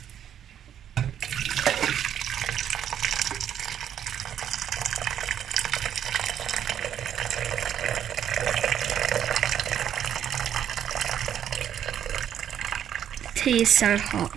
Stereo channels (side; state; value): left; quieter; 9.7 dB